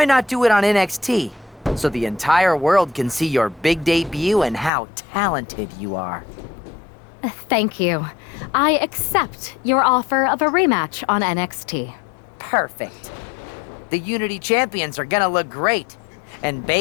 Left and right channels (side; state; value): right; drops out; at 4.7 s